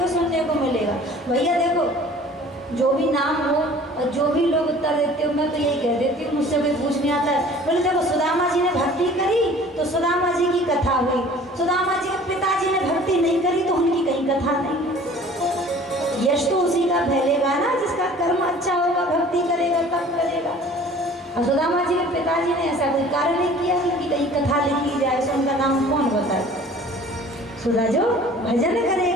सुनने को मिलेगा। भैया देखो, जो भी नाम हो और जो भी लोग उत्तर देते हो, मैं तो यही कह देती हूँ, मुझसे कोई पूछने आता है, बोले देखो सुदामा जी ने भक्ति करी तो सुदामा जी की कथा हुई, सुदामा जी के पिताजी ने भक्ति नहीं करी तो उनकी कहीं कथा नहीं। यश तो उसी का फैलेगा ना जिसका कर्म अच्छा होगा, भक्ति करेगा तब करेगा। और सुदामा जी के पिताजी ने ऐसा कोई कार्य नहीं किया कि कहीं कथा लिखी जाए, सो उनका नाम कौन बताए? सुधा जो भजन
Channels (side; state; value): both; normal; correlation 0.48